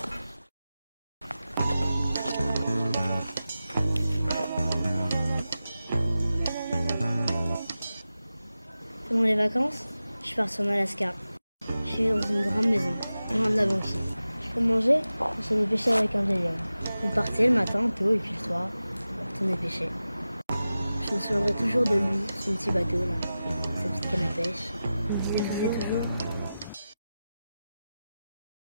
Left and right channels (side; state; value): both; inverted; correlation -0.94